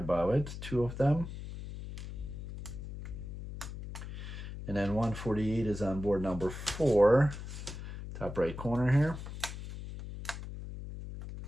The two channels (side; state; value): left; noise; hum, 9 dB below the sound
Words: it, 2 of them. And then 148 is on board number 4, top right corner here.